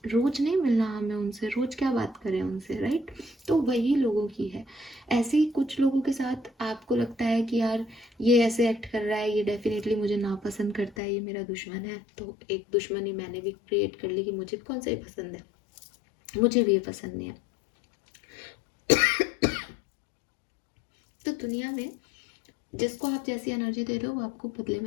रोज नहीं मिलना हमें उनसे, रोज क्या बात करें उनसे, राइट। तो वही लोगों की है। ऐसे ही कुछ लोगों के साथ आपको लगता है कि यार ये ऐसे एक्ट कर रहा है, ये डेफिनेटली मुझे नापसंद करता है, ये मेरा दुश्मन है, तो एक दुश्मनी मैंने भी क्रिएट कर ली कि मुझे कौन सा ही पसंद है, मुझे भी ये पसंद नहीं है। तो दुनिया में जिसको आप जैसी एनर्जी दे रहे हो वो आपको बदले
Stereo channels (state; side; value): drops out; right; at 11.0 s